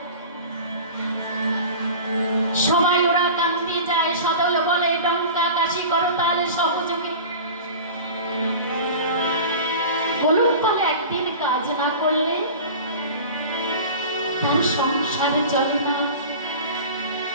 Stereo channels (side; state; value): both; inverted; correlation -0.36